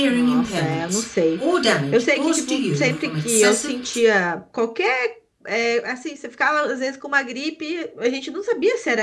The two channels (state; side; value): identical; both; correlation 1.00